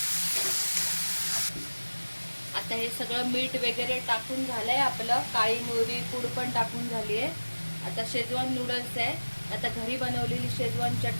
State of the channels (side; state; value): both; inverted; correlation -1.00